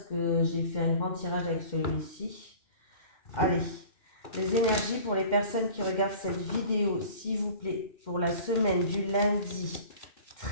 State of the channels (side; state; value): right; late; 2.1 ms